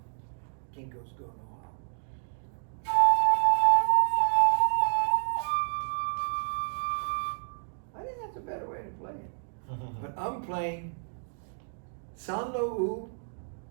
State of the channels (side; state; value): left; silent; digital silence